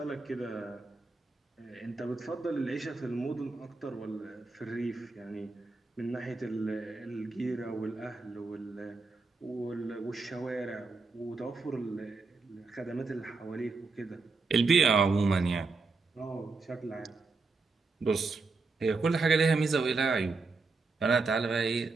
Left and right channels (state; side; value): quieter; left; 4.0 dB